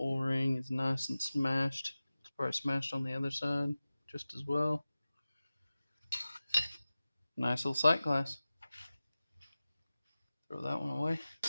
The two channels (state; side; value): inverted; both; correlation -0.96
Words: is nice and smashed. It's probably smashed on the other side just as well. Nice little sight glass. Throw that one away.